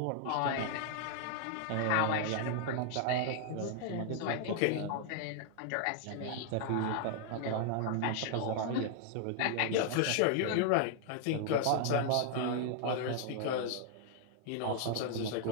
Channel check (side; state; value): both; different; correlation 0.00